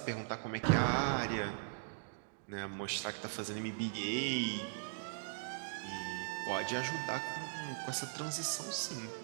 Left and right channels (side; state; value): left; silent; digital silence